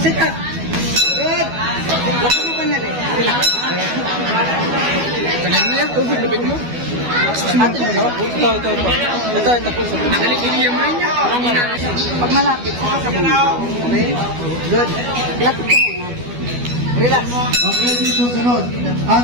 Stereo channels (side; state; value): left; late; 12 ms